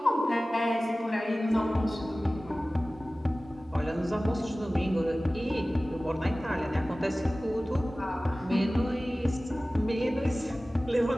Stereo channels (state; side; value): normal; both; correlation 0.97